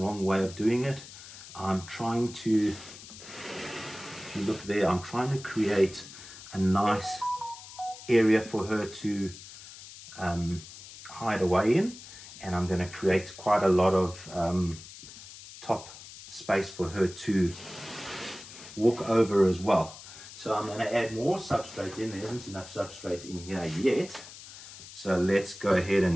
wrong way of doing it. I'm trying to, if you look there, I'm trying to create a nice area for her to hide away in, and I'm going to create quite a lot of top space for her to walk over as well. So I'm going to add more substrate in. There isn't enough substrate in here yet, so let's go ahead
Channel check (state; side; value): noise; left; hiss, 16 dB below the sound